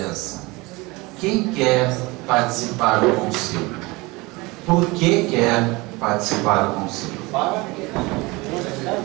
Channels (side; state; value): left; quieter; 23.6 dB